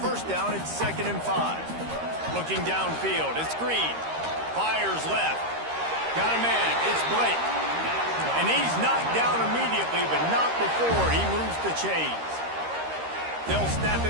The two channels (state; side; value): late; left; 13 ms